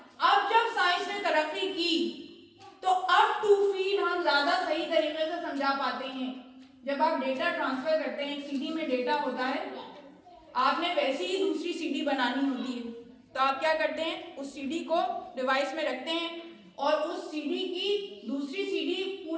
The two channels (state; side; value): identical; both; correlation 1.00